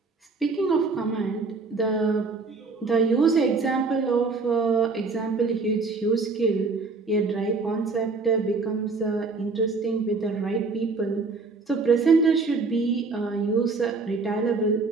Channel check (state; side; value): quieter; left; 4.1 dB